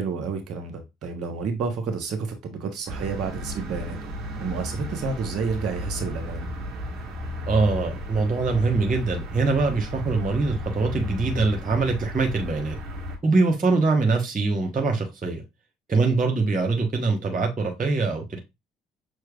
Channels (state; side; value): quieter; left; 3.1 dB